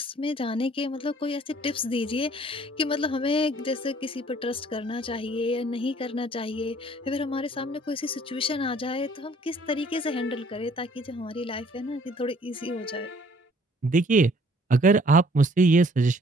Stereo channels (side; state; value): both; normal; correlation 0.58